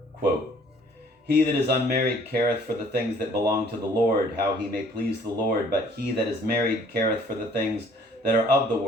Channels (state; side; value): normal; both; correlation 0.58